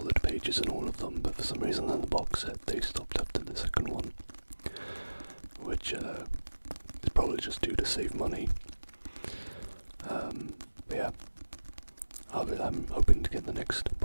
pages in all of them, but for some reason in the box set they stopped after the second one. Which is probably just due to save money. But yeah, I'm hoping to get the next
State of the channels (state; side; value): inverted; both; correlation -1.00